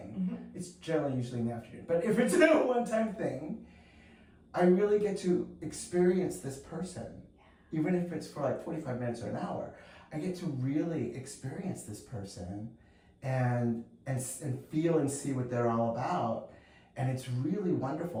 it's generally usually in the afternoon, but if it's a one-time thing, I really get to experience this person. Even if it's for like 45 minutes or an hour, I get to really experience this person and feel and see what they're all about. And it's really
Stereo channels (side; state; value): both; identical; correlation 1.00